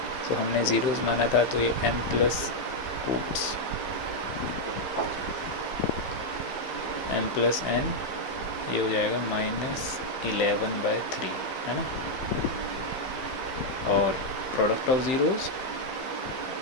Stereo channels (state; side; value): late; right; 15 ms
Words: तो हमने ज़ीरोज़ माना था तो ये m प्लस n, ये हो जाएगा -11/3, है ना। और प्रोडक्ट ऑफ ज़ीरोज़